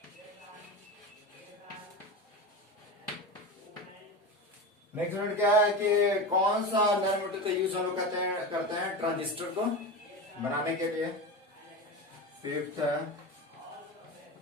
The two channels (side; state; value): both; normal; correlation 0.24